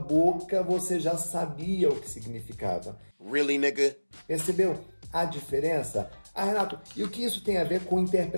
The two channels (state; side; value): inverted; both; correlation -1.00